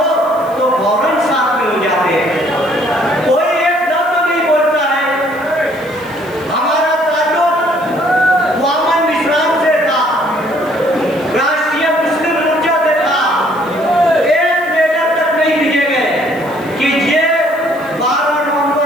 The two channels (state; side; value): noise; right; hiss, 24 dB below the sound